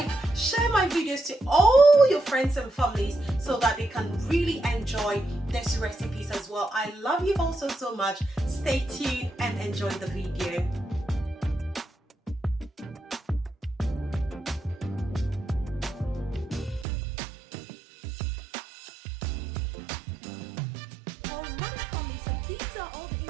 share my videos to all your friends and families so that they can really enjoy these recipes as well. I love you all so much. Stay tuned and enjoy the video. Alright family, so these are all the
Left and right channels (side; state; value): left; drops out; at 16.9 s